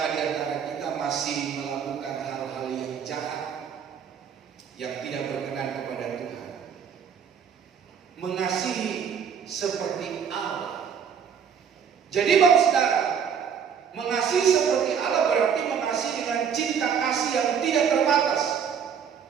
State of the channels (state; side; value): quieter; left; 7.4 dB